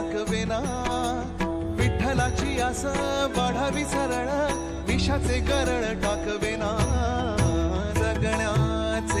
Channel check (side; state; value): both; identical; correlation 1.00